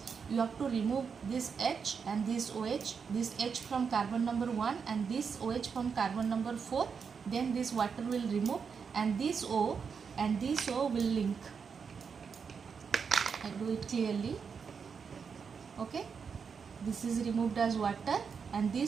You have to remove this H and this OH, this H from carbon number 1 and this OH from carbon number 4. Then this water will remove, and this O and this O will link. I do it clearly. Okay, this is removed as water and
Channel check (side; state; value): left; quieter; 6.1 dB